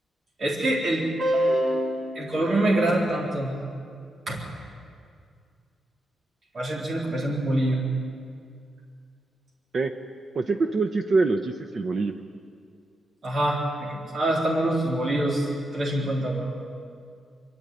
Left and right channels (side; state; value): both; normal; correlation 0.85